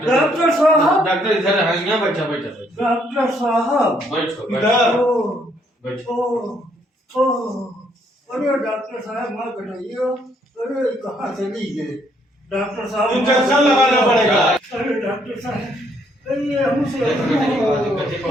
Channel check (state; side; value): normal; both; correlation 0.69